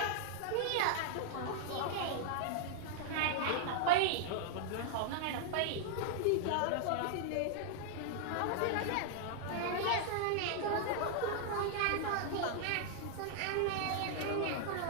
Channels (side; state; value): both; different; correlation -0.01